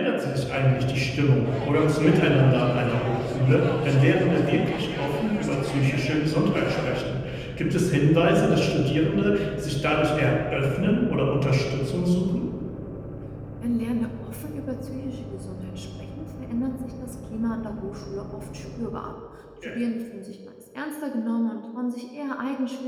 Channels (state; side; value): identical; both; correlation 1.00